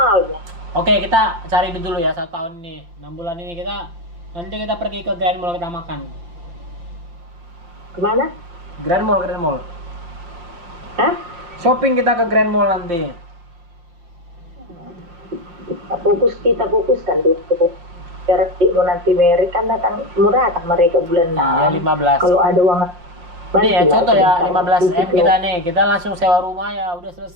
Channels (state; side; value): late; left; 5.8 ms